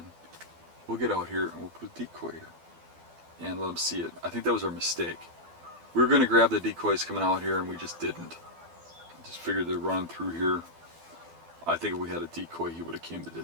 we'll get out here and we'll put a decoy here and let him see it. I think that was our mistake. We were going to grab the decoys coming out here and we just didn't. Just figured they're running through here. I think if we had a decoy he would have came the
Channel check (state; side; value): late; left; 12 ms